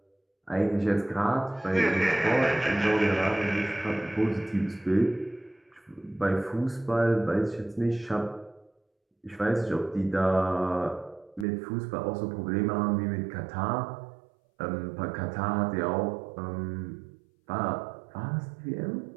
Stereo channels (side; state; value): left; drops out; at 11.5 s